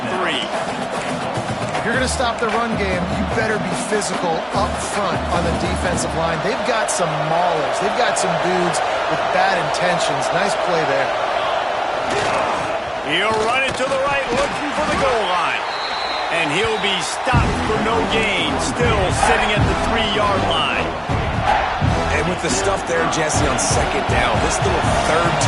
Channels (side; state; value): both; identical; correlation 1.00